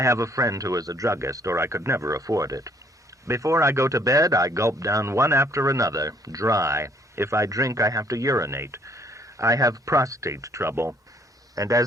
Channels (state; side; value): normal; both; correlation 0.63